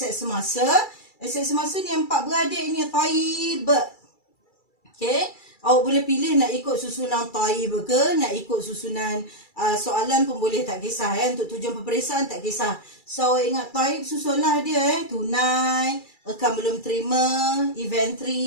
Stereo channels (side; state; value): right; late; 2.3 ms